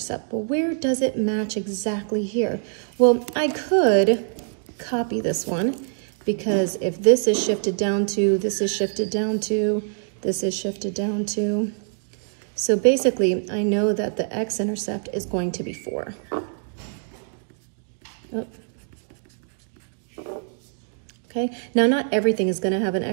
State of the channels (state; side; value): silent; left; digital silence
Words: well, where does it match exactly here? Well, I could copy this one because if this is shifted down to, this is shifted down to, this is shifted down to, so basically, I know that the x-intercept is going to be 4. Oh. Okay, now not everything is going to have an